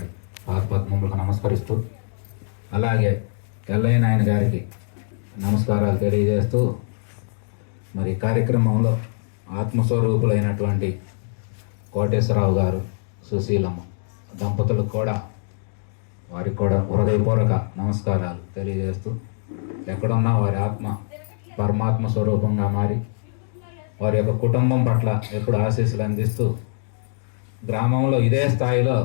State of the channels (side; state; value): right; silent; digital silence